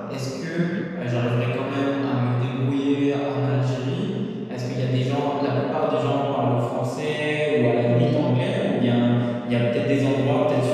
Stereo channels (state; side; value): identical; both; correlation 1.00